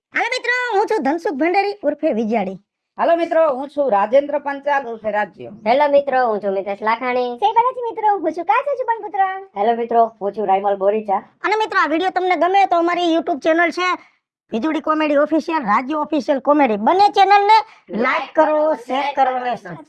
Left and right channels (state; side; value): identical; both; correlation 1.00